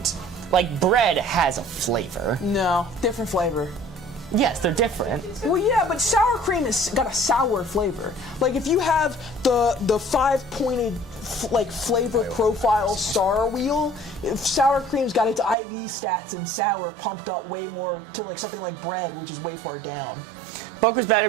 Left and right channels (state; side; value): drops out; left; at 15.6 s